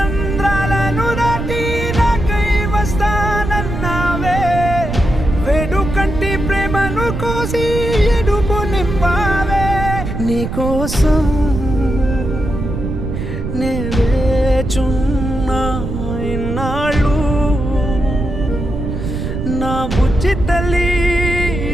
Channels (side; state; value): right; noise; rumble, 4 dB below the sound